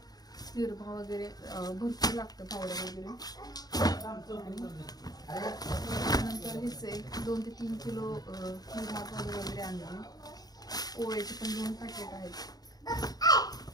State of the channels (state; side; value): late; right; 0.19 ms